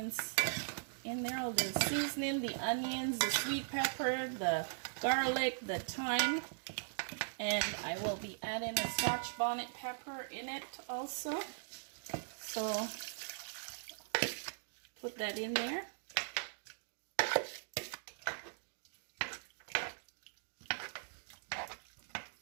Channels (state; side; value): silent; left; digital silence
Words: in there, all the seasoning, the onions, the sweet pepper, the garlic, the thyme, and I will be adding a Scotch bonnet pepper in it also. So put that in there.